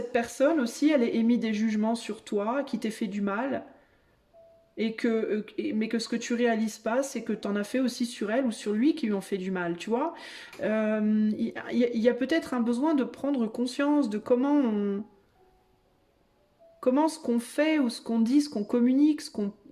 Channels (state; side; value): identical; both; correlation 1.00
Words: personne aussi, elle ait émis des jugements sur toi, qui t'ait fait du mal, mais que ce que tu réalises pas, c'est que tu en as fait aussi sur elle ou sur lui qui lui ont fait du mal, tu vois. Il y a peut-être un besoin de prendre conscience de comment ce qu'on fait ou ce qu'on dit, ce qu'on communique, ce